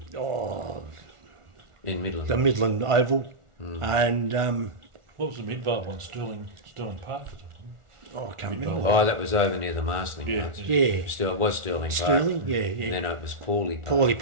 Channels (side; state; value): left; late; 1.4 ms